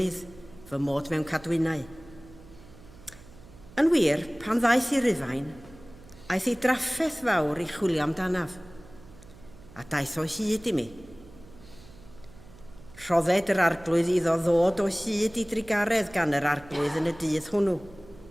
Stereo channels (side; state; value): right; noise; hum, 21 dB below the sound